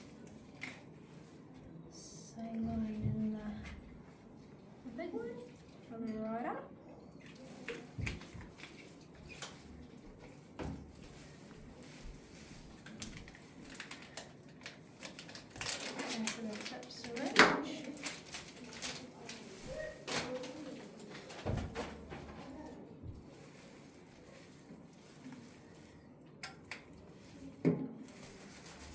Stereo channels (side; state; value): both; identical; correlation 1.00